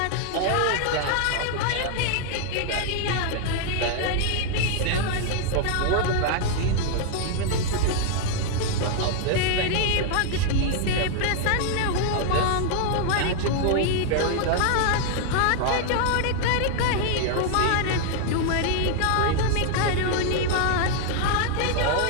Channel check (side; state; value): both; different; correlation 0.00